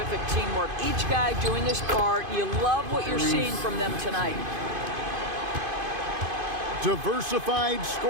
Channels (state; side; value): late; left; 2.5 ms